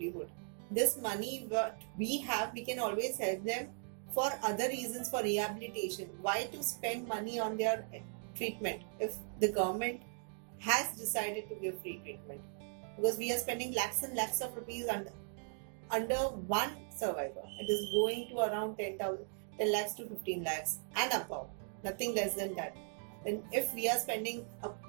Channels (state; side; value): silent; left; 52 dB below the other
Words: This money what we have, we can always help them for other reasons, for rehabilitation. Why to spend money on their treatment if the government has decided to give free treatment? Because we are spending lakhs and lakhs of rupees under one survivor. It is going to around 10 lakhs to 15 lakhs and above, nothing less than that. Then if we are spending a